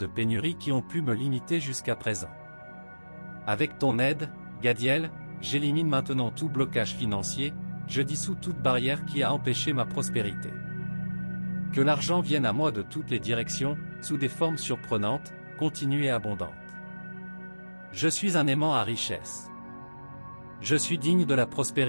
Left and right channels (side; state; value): both; inverted; correlation -1.00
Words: pénurie qui ont pu me limiter jusqu'à présent. Avec ton aide, Gadiel, j'élimine maintenant tout blocage financier, je dissous toute barrière qui a empêché ma prospérité. Que l'argent vienne à moi de toutes les directions, sous des formes surprenantes, continues et abondantes. Je suis un aimant à richesse. Je suis digne de la